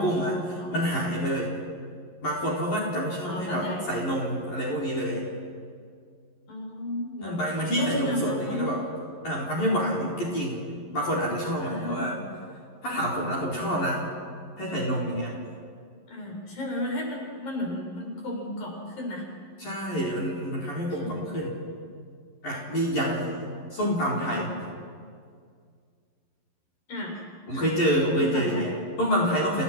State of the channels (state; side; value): late; right; 11 ms